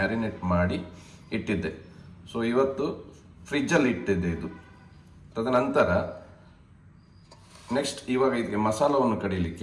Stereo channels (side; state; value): both; identical; correlation 1.00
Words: ಮಾಡಿ ಇಟ್ಟಿದ್ದೆ. ಸೊ ಇವತ್ತು ಫ್ರಿಜ್ಜಲ್ಲಿ ಇಟ್ಟಿದ್ದೆ ಇದು. ತದನಂತರ ನೆಕ್ಸ್ಟ್ ಇವಾಗ ಇದಕ್ಕೆ ಮಸಾಲವನ್ನು